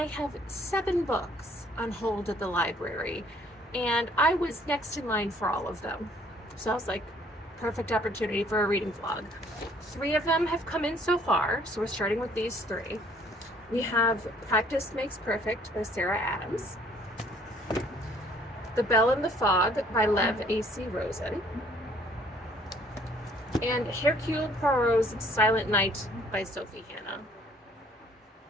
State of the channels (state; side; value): normal; both; correlation 0.60